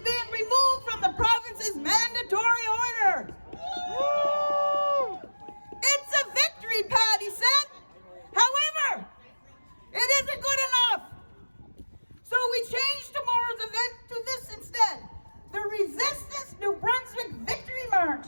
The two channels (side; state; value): both; inverted; correlation -1.00